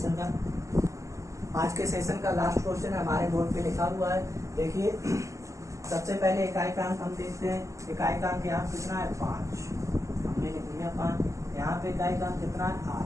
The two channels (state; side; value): late; left; 0.15 ms